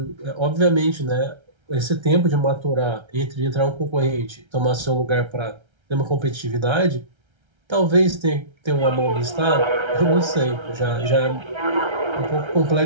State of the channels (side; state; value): left; late; 1.3 ms